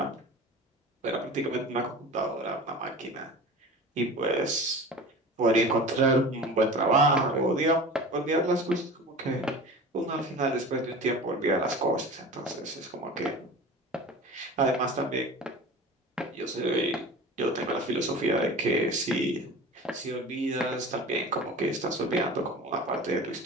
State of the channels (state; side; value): normal; both; correlation 0.36